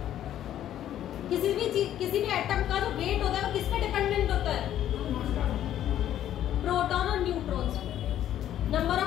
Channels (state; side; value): quieter; right; 11.5 dB